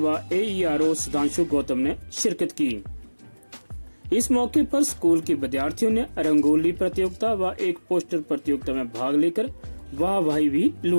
एईआरओ सुधांशु गौतम ने शिरकत की। इस मौके पर स्कूल के विद्यार्थियों ने रंगोली प्रतियोगिता व एक पोस्टर प्रतियोगिता में भाग लेकर वाहवाही भी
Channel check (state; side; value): inverted; both; correlation -1.00